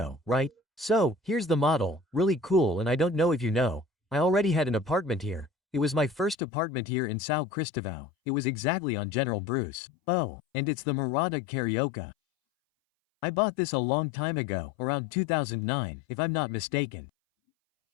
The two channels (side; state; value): right; drops out; at 6.4 s